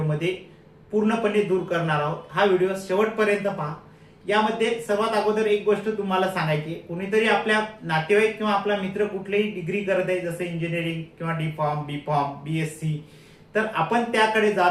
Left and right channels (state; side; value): identical; both; correlation 1.00